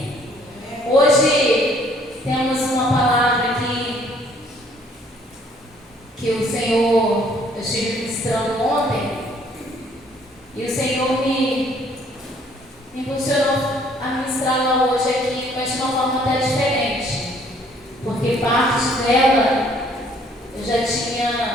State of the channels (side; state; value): both; normal; correlation 0.61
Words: Hoje temos uma palavra aqui que o Senhor, eu estive ministrando ontem, e o Senhor me impulsionou a ministrá-la hoje aqui, mas de uma forma até diferente, porque parte dela eu já